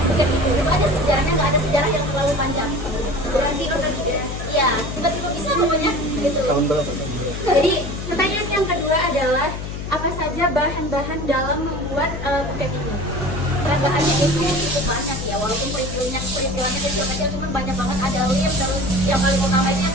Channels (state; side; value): noise; left; hum, 7 dB below the sound